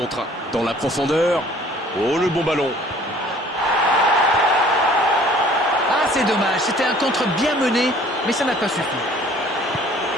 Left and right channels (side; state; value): both; normal; correlation 0.53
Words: Dans la profondeur. Oh, le bon ballon. Ah, c'est dommage. C'était un contre bien mené, mais ça n'a pas suffi.